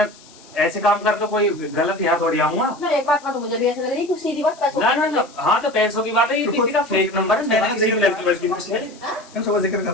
ऐसे काम कर, तो कोई गलत यहाँ थोड़ी आऊंगा ना एक बात तो मुझे भी ऐसा लग रही है, कुछ सीधी बात पैसों ना। हाँ तो पैसों की बात है, ये किसी का फेक नंबर है, मैंने किसी की लड़की वड़की ना छेड़ी। क्या उसका जिक्र कर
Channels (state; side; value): noise; left; hiss, 24 dB below the sound